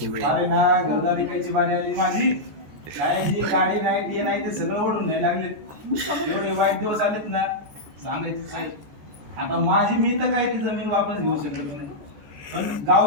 अरे ना घरदारी कायची बारी आली माझी. काय जी गाडी नाही ते नाही ते सगळं ओढून नाही लागलेत. एवढे वाईट दिवस आलेत ना, सांगायचं नाही. आता माझी मी तर काय ती जमीन वापस घेऊ शकत नाही, पण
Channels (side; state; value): left; late; 14 ms